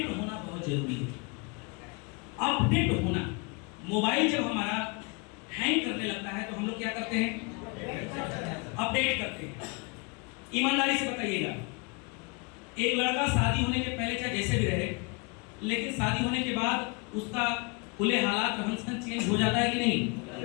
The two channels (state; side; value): quieter; right; 31.1 dB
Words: होना बहुत जरूरी है। अपडेट होना, मोबाइल जब हमारा हैंग करने लगता है तो हम लोग क्या करते हैं? अपडेट करते हैं। ईमानदारी से बताइएगा, एक लड़का शादी होने के पहले चाहे जैसे भी रहे, लेकिन शादी होने के बाद उसका खुले हालात रहन सहन चेंज हो जाता है कि नहीं?